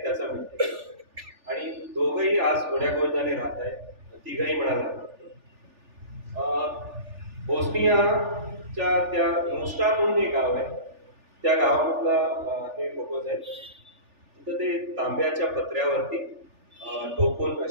त्याचा मिळते. आणि दोघंही आज गोड्यागोविंदाने राहत आहेत, तिघही म्हणाला. बोस्नियाच्या त्या मोस्टा म्हणून एक गाव आहे, त्या गावामधला हे फोटोज आहेत. तिथं ते तांब्याच्या पत्र्यावरती ठोकून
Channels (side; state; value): left; late; 3.4 ms